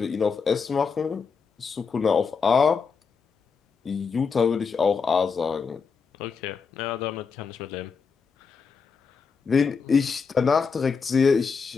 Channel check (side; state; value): right; quieter; 5.5 dB